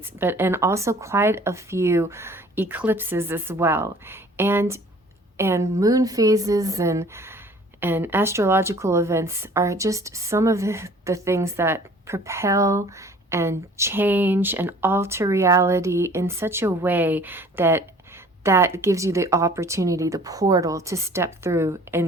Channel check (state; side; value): normal; both; correlation 0.50